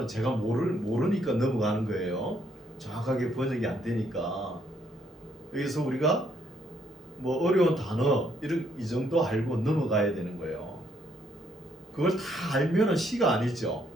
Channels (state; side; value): normal; both; correlation 0.71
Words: 제가 모르니까 넘어가는 거예요. 정확하게 번역이 안 되니까. 여기서 우리가 뭐 어려운 단어 이 정도 알고 넘어가야 되는 거예요. 그걸 다 알면은 시가 아니죠.